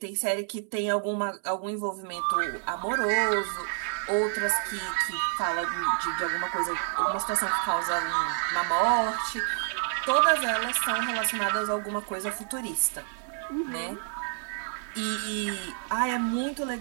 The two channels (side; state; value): left; silent; 59 dB below the other